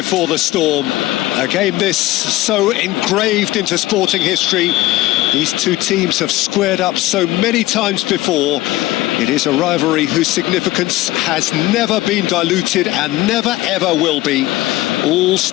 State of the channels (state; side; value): quieter; right; 17.5 dB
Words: the storm. A game this so engraved into sporting history. These two teams have squared up so many times before. It is a rivalry whose significance has never been diluted and never ever will be. All